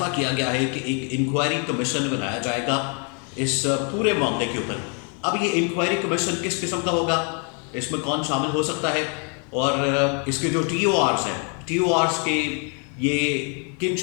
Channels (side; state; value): right; quieter; 38.7 dB